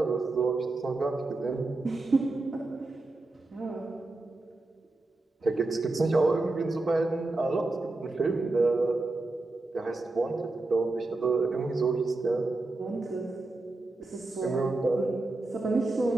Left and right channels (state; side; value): quieter; left; 3.0 dB